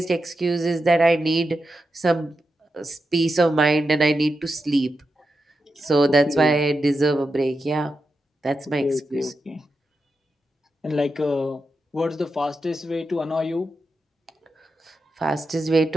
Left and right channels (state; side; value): normal; both; correlation 0.88